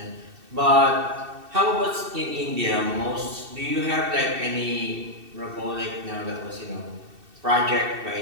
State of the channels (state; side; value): late; left; 2.7 ms